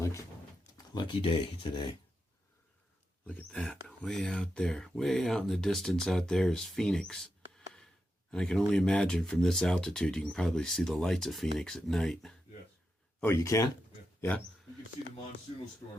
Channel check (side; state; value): both; normal; correlation 0.87